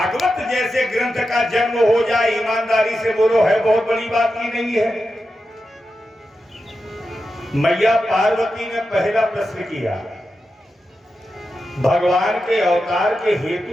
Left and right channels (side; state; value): both; normal; correlation 0.90